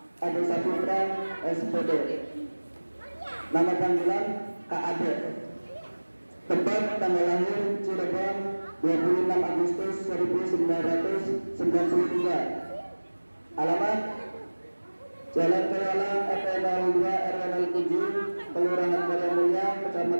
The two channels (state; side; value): inverted; both; correlation -1.00